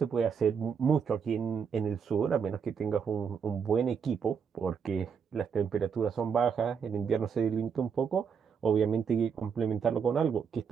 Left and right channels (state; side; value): quieter; left; 6.6 dB